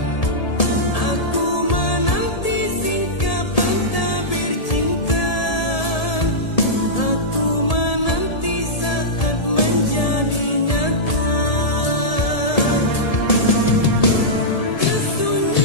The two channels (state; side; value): late; right; 1.7 ms